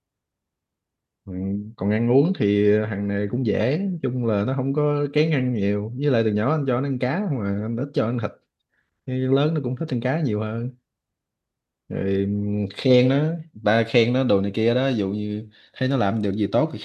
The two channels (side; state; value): both; identical; correlation 1.00